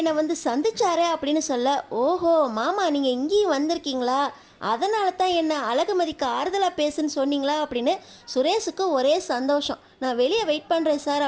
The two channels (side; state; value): both; identical; correlation 1.00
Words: வந்து சந்திச்சாரே அப்படின்னு சொல்ல, ஓஹோ மாமா நீங்கள் இங்கேயும் வந்திருக்கீங்களா, அதனால தான் என்ன அழகுமதிக்கு ஆறுதலாக பேசுன்னு சொன்னீங்களா அப்படின்னு சுரேஷுக்கு ஒரே சந்தோஷம். நான் வெளியே வெயிட் பண்ணுறேன்